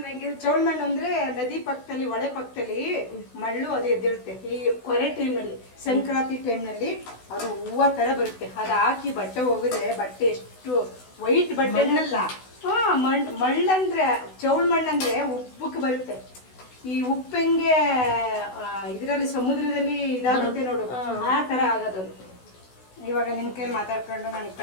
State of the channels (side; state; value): right; late; 16 ms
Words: ಮಣ್ಣು ಅಂದ್ರೆ ನದಿ ಪಕ್ಕದಲ್ಲಿ, ಹೊಳೆ ಪಕ್ಕದಲ್ಲಿ ಮಳ್ಳು ಅದು ಎದ್ದಿರುತ್ತೆ. ಈ ಕೊರೆ ಟೈಮ್ನಲ್ಲಿ, ಸಂಕ್ರಾಂತಿ ಟೈಮ್ನಲ್ಲಿ ಅದು ಹೂವು ತರ ಬರುತ್ತೆ. ಅದು ಹಾಕಿ ಬಟ್ಟೆ ಹೋಗಿದ್ರೆ ಬಟ್ಟೆ ಎಷ್ಟು ವೈಟ್ ಬಟ್ಟೆನಲ್ಲ. ಮಳ್ಳಂದ್ರೆ ಚೌಳ್ ಮಣ್ಣಂದ್ರೆ ಉಪ್ಪಕ್ಕೆ ಬರುತ್ತೆ. ಈ ಉಪ್ಪು ಹೆಂಗೆ ಇದರಲ್ಲಿ ಸಮುದ್ರದಲ್ಲಿ ಇದಾಗುತ್ತೆ ನೋಡು, ಆ ತರ ಆಗೋದು. ಇವಾಗ ನಿನ್ ಕೈಲಿ ಮಾತಾಡ್ಕೊಂಡು ನಾನು ಈ